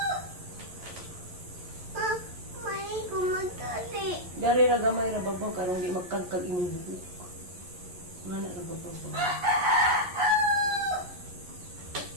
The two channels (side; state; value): left; late; 11 ms